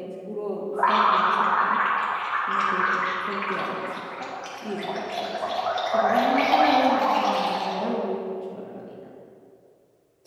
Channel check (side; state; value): both; identical; correlation 1.00